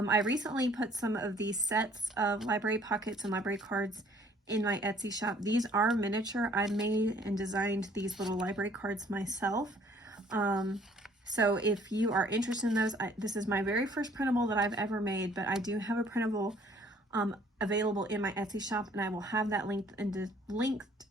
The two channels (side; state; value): both; normal; correlation 0.58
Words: recently put some of these sets of library pockets and library cards in my Etsy shop. These are miniature. I made and designed these little library cards myself. So if you are interested in those, this is my very first printable that I've ever made, but I do have a printable available in my Etsy shop, and I will have that linked